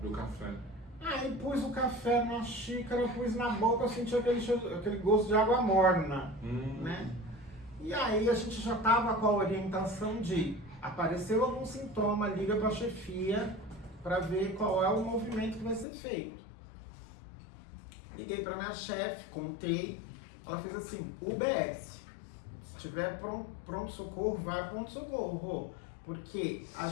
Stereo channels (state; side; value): drops out; right; at 15.9 s